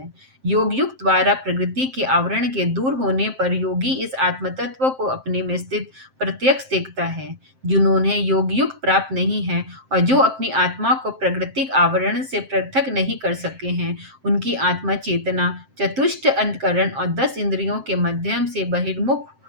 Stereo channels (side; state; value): left; late; 7.6 ms